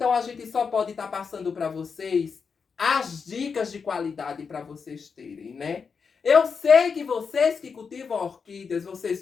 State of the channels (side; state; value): right; quieter; 5.7 dB